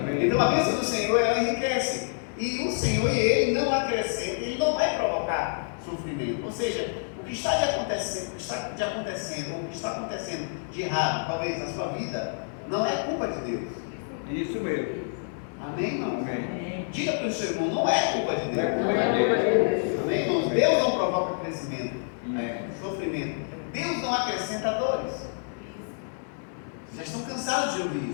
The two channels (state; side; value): silent; right; 60 dB below the other